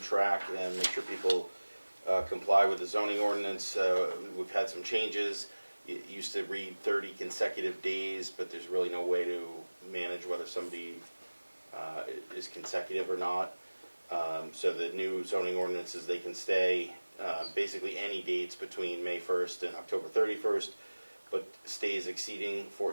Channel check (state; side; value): inverted; both; correlation -1.00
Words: track and make sure people comply with the zoning ordinance. We've had some changes. It used to read 30 consecutive days, but there's really no way to manage whether somebody is consecutive or not. So the new zoning ordinances, they can stay basically any dates between May 1st and October 31st, but stays exceeding